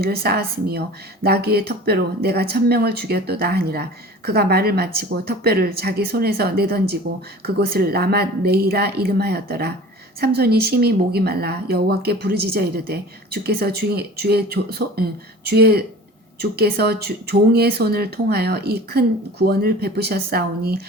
쌓았으며 나귀의 턱뼈로 내가 1,000명을 죽였도다 하니라. 그가 말을 마치고 턱뼈를 자기 손에서 내던지고 그곳을 라맛 레이라 이름하였더라. 삼손이 심히 목이 말라 여호와께 부르짖어 이르되 주께서 종의 손을 통하여 이 큰 구원을 베푸셨사오니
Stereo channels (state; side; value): normal; both; correlation 0.41